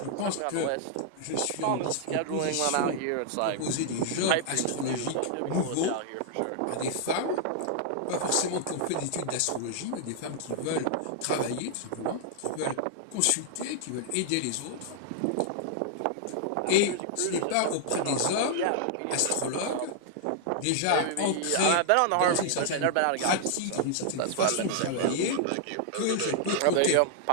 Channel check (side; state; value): both; different; correlation -0.01